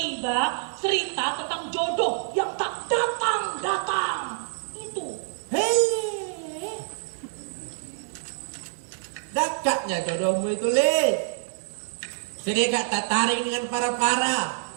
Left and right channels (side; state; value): left; silent; 61 dB below the other